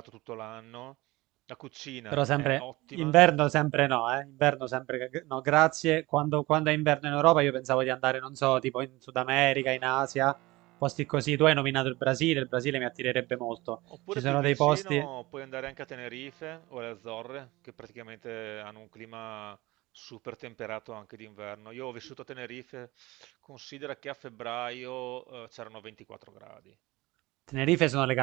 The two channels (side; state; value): left; quieter; 20.7 dB